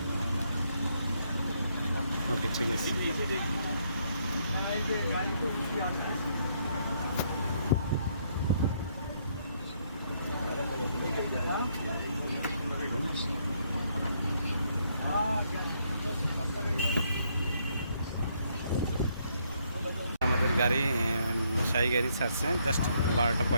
ওকে, ঠিক আছে। আমাদের গাড়ি শাহী গাড়ি ছাড়ছে জাস্ট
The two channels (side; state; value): both; inverted; correlation -0.72